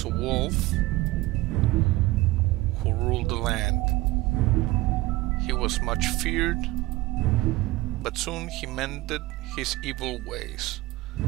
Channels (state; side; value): quieter; left; 19.3 dB